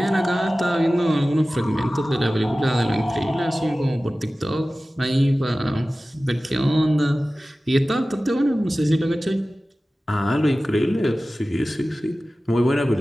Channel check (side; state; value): both; normal; correlation 0.96